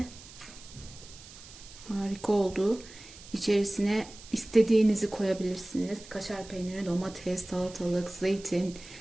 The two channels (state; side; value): noise; right; hiss, 18 dB below the sound